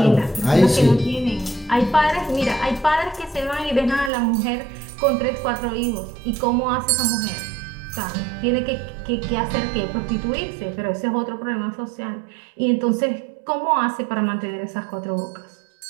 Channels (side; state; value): left; drops out; at 4.1 s